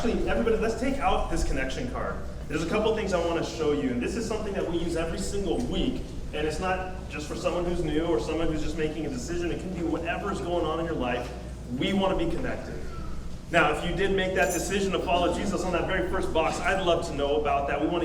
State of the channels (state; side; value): identical; both; correlation 1.00